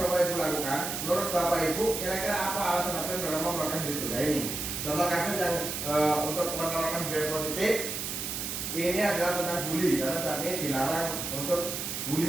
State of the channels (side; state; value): right; noise; hiss, 4 dB below the sound